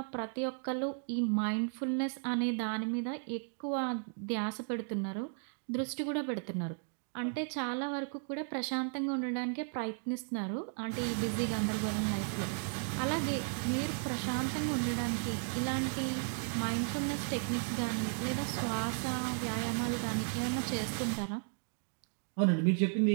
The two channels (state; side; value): silent; left; 54 dB below the other